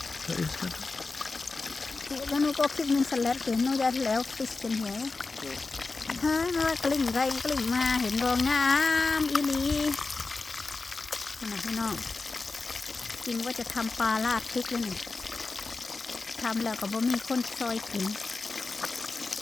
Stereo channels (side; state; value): right; quieter; 3.8 dB